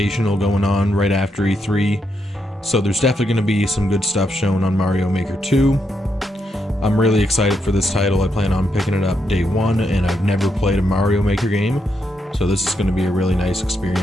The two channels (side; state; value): both; normal; correlation 0.81